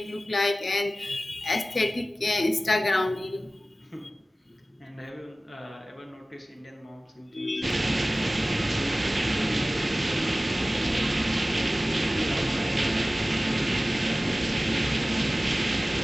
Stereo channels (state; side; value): normal; both; correlation 0.97